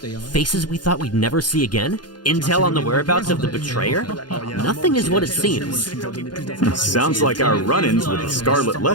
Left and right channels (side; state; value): right; late; 0.70 ms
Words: Faces we thought we'd never see again? Intel on the whereabouts of the betrayer? Nothing is what it seems. Sounds like our run-ins with the Scarlet